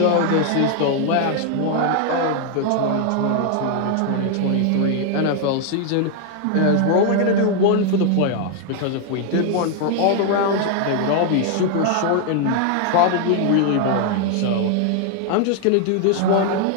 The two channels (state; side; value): different; both; correlation 0.00